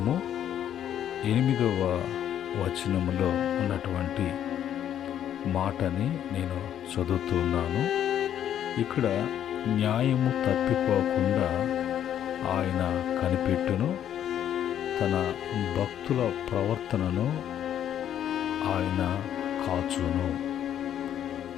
8వ వచనములో ఉన్నటువంటి మాటని నేను చదువుతూ ఉన్నాను. ఇక్కడ న్యాయము తప్పిపోకుండా ఆయన కనిపెట్టును, తన భక్తుల ప్రవర్తనను ఆయన కాచును.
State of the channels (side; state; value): right; quieter; 10.3 dB